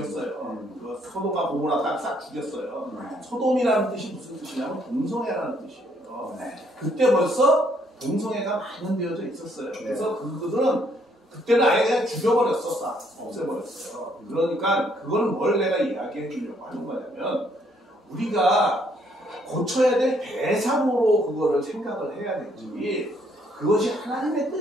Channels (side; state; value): both; normal; correlation 0.68